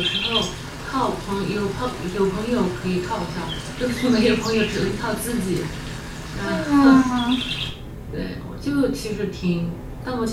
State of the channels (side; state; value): both; identical; correlation 1.00